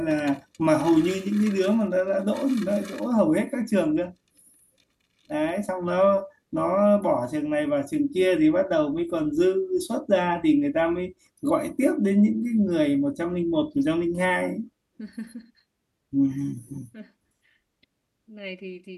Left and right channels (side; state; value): both; identical; correlation 1.00